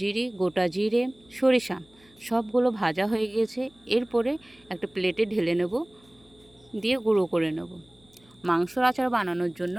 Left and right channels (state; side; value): noise; left; hum, 29 dB below the sound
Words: গোটা জিরে, সরিষা সবগুলো ভাজা হয়ে গেছে। এরপরে একটা প্লেটে ঢেলে নেব, দিয়ে গুঁড়ো করে নেব। মাংসর আচার বানানোর জন্য